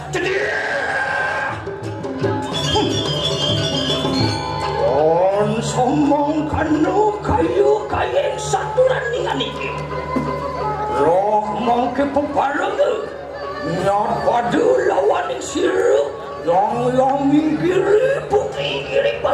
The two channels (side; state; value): both; identical; correlation 1.00